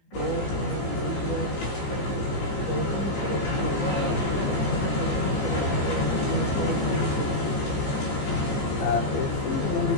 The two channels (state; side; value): late; right; 15 ms